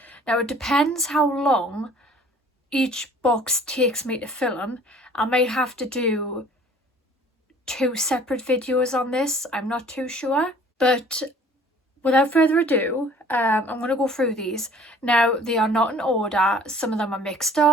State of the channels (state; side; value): normal; both; correlation 0.52